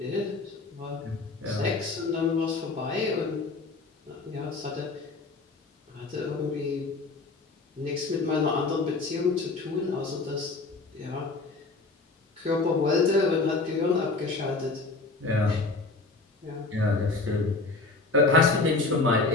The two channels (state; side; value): quieter; right; 3.6 dB